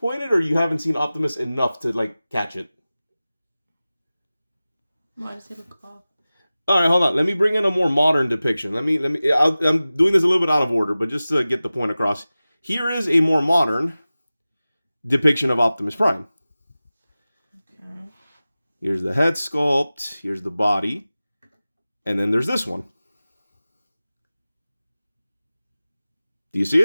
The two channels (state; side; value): inverted; both; correlation -0.97